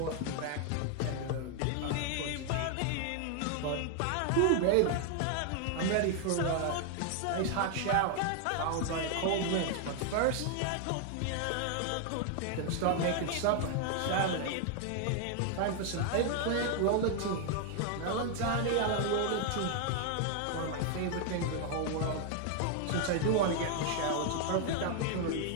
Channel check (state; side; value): different; both; correlation 0.00